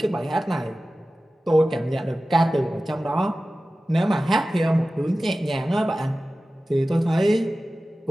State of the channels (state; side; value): normal; both; correlation 0.95